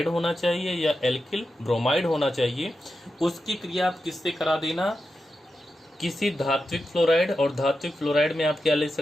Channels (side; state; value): both; normal; correlation 0.89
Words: होना चाहिए या एल्किल ब्रोमाइड होना चाहिए। उसकी क्रिया आप किससे करा देना? किसी धात्विक फ्लोराइड, और धात्विक फ्लोराइड में आप क्या ले